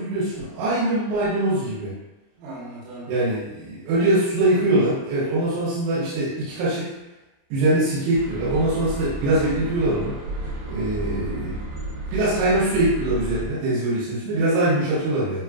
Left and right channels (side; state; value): left; late; 29 ms